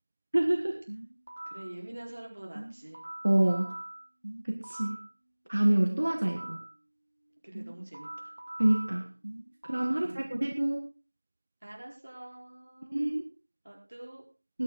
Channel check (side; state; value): both; inverted; correlation -1.00